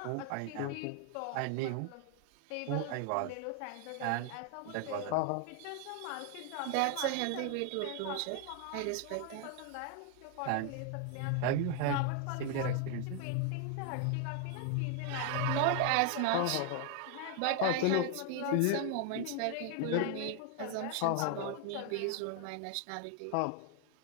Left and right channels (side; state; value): both; different; correlation 0.00